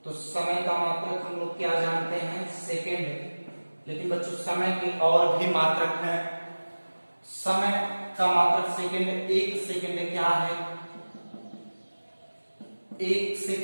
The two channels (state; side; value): inverted; both; correlation -1.00